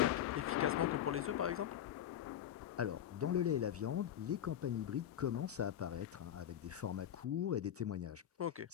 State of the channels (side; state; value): right; quieter; 10.6 dB